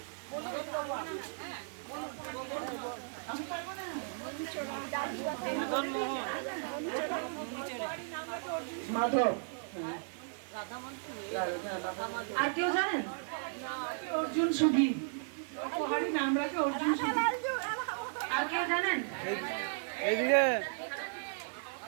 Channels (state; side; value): silent; left; digital silence